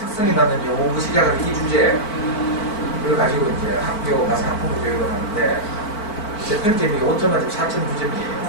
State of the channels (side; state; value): right; late; 4.5 ms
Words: 맞는 영어 공부 시작을 이 주제를 가지고 이제 학교 가서 학부모 교육을 하는데 제 평점이 5점 만점